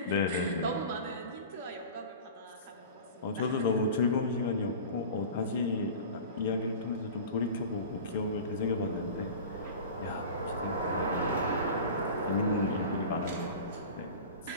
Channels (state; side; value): inverted; both; correlation -0.35